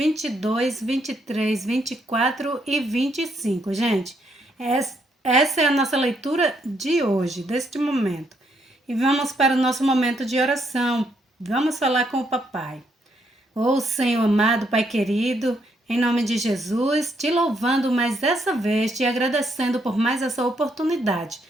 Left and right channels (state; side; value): normal; both; correlation 0.74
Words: 23, 24 e 25, gente. Essa é a nossa leitura de hoje, deste momento. E vamos para o nosso momento de oração. Vamos falar com o papai. Ô Senhor amado, Pai querido, em nome de Jesus, te louvando mais dessa vez, te agradecendo por mais essa oportunidade.